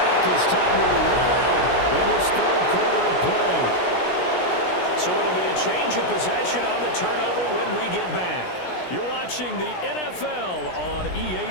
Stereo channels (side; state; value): right; late; 16 ms